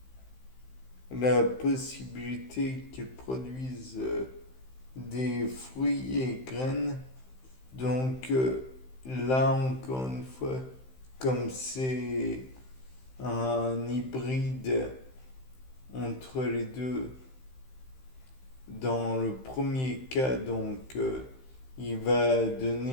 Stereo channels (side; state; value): right; late; 15 ms